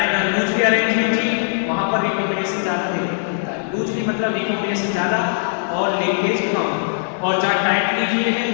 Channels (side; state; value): right; silent; digital silence